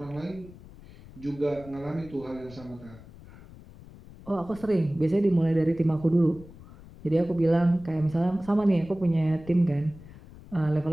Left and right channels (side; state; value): left; noise; rumble, 19 dB below the sound